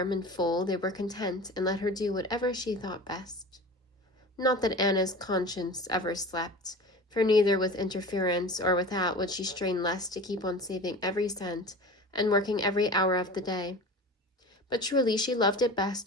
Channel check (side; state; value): both; normal; correlation 0.35